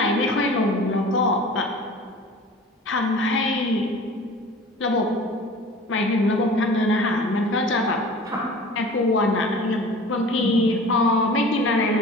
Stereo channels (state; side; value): normal; both; correlation 0.42